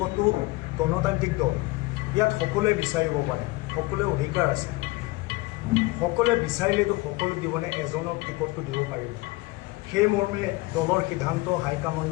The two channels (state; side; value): quieter; right; 22.1 dB